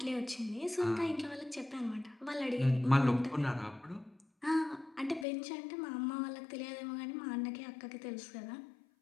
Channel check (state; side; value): drops out; right; at 5.2 s